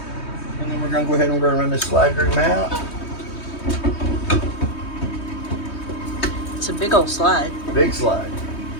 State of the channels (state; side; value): late; right; 3.2 ms